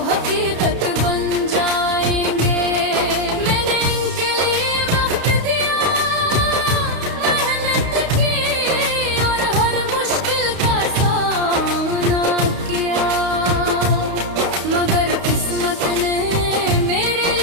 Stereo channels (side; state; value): left; late; 31 ms